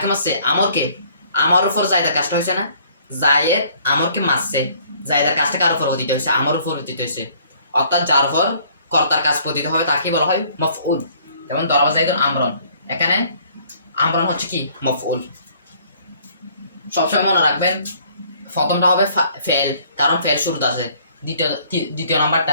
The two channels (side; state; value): both; inverted; correlation -0.59